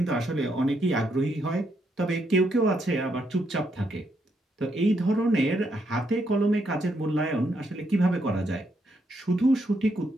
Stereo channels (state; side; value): normal; both; correlation 0.77